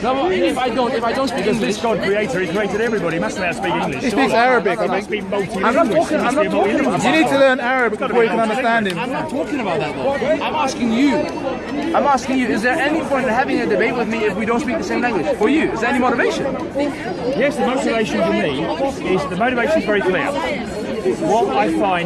No, if I don't speak Because English, this God creator, he created everybody. He must know how to speak English. He speaks Arabic, I He must think. be multilingual. I'm not talking about You need to learn Arabic before you can understand him. I'm not talking about that though. I'm asking you, is there any point in having a debate with me if we don't speak the same language? For you, is there any motivation? Yes, the motivation for me is very clear. What I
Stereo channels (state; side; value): identical; both; correlation 1.00